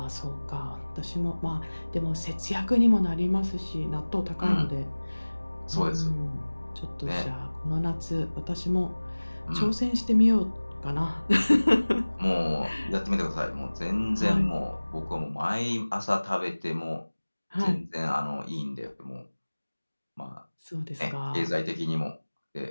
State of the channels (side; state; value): both; inverted; correlation -1.00